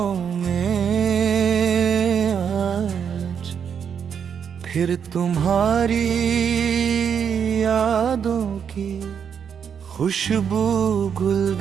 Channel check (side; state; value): left; quieter; 7.5 dB